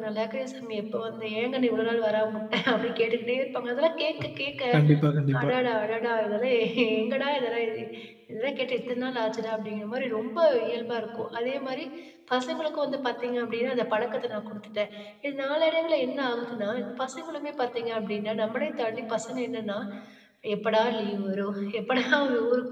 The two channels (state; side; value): identical; both; correlation 1.00